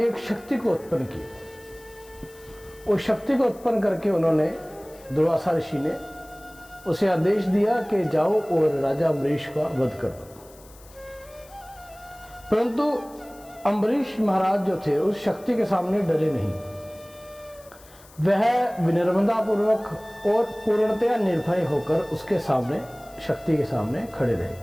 एक शक्ति को उत्पन्न किया। उस शक्ति को उत्पन्न करके उन्होंने दुर्वासा ऋषि ने उसे आदेश दिया कि जाओ और राजा अम्बरीश का वध कर दो। परंतु अम्बरीश महाराज जो थे उस शक्ति के सामने डरे नहीं। वह विनम्रता पूर्वक और पूर्णतया निर्भय होकर उसके सामने, शक्ति के सामने खड़े रहे।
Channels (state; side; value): noise; left; hiss, 24 dB below the sound